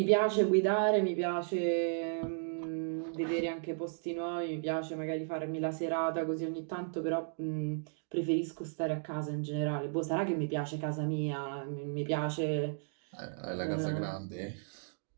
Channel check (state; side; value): silent; left; digital silence